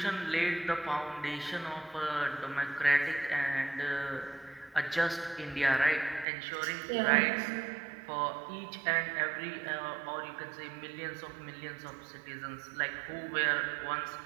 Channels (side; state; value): left; drops out; at 6.2 s